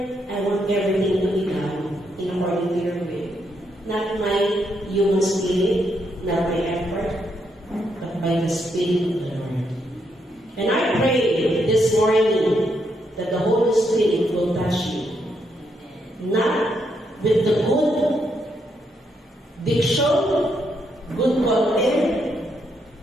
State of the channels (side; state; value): both; normal; correlation 0.78